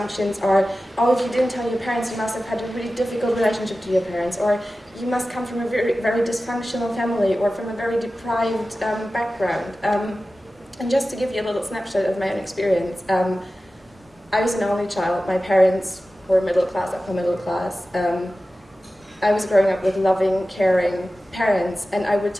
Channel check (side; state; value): both; normal; correlation 0.95